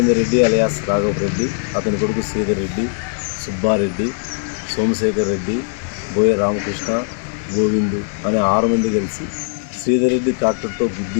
రెడ్డి అలియాస్ రాఘవ్ రెడ్డి, అతని కొడుకు శ్రీధర్ రెడ్డి, సుబ్బారెడ్డి, సోమశేఖర్ రెడ్డి, బోయ రామకృష్ణ, గోవిందు అనే 6 మంది కలిసి శ్రీధర్ రెడ్డి ట్రాక్టర్తో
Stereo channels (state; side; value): silent; right; digital silence